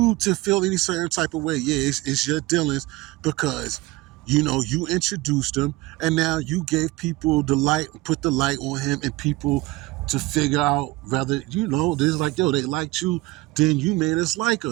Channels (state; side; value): quieter; left; 20.5 dB